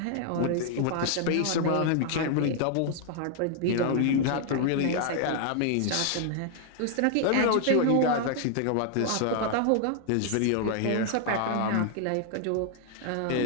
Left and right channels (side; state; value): both; different; correlation 0.00